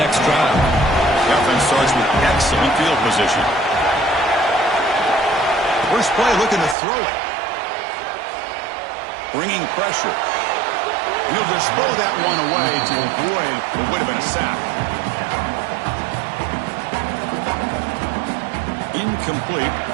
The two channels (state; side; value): drops out; left; at 6.8 s